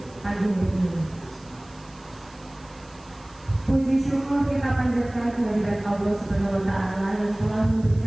pagi hari ini. Puji syukur kita panjatkan kehadirat Allah Subhanahu wa Ta'ala yang telah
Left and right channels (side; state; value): right; noise; hiss, 26 dB below the sound